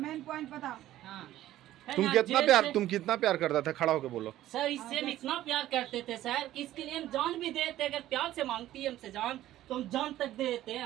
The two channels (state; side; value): quieter; left; 13.9 dB